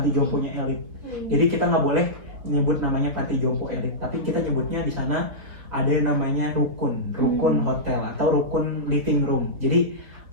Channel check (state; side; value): late; left; 3.8 ms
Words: elit. Jadi kita nggak boleh nyebut namanya panti jompo elit, tapi kita nyebutnya di sana ada yang namanya rukun hotel atau rukun living room. Jadi